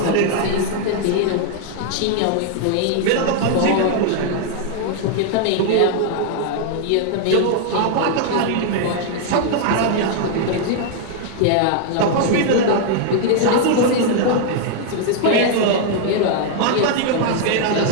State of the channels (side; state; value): both; different; correlation 0.00